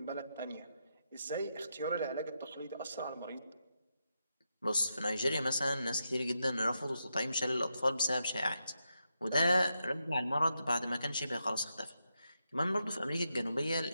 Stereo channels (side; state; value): both; inverted; correlation -0.85